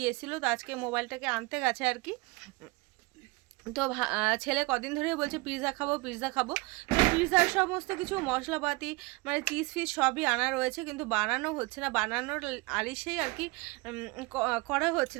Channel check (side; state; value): left; quieter; 25.3 dB